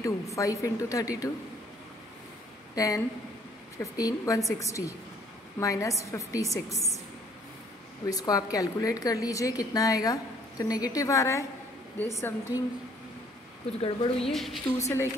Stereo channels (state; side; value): normal; both; correlation 0.61